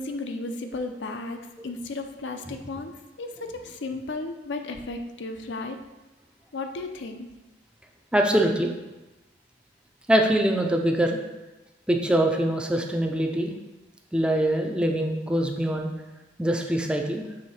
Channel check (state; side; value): normal; both; correlation 0.75